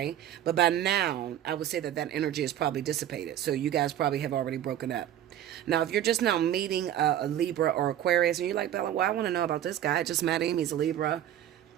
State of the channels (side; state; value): left; quieter; 11.4 dB